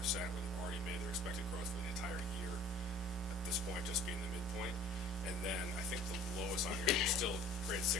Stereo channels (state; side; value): normal; both; correlation 0.50